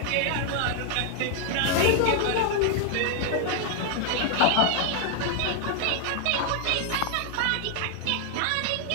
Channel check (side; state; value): both; different; correlation 0.00